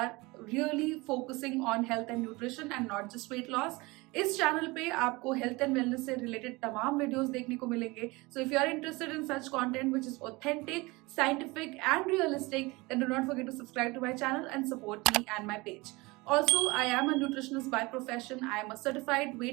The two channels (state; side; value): quieter; left; 23.5 dB